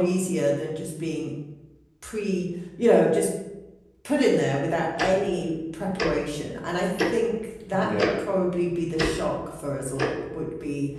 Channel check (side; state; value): both; identical; correlation 1.00